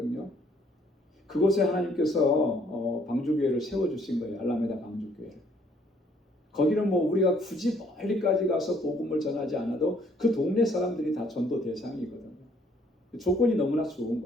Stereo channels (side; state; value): both; normal; correlation 0.64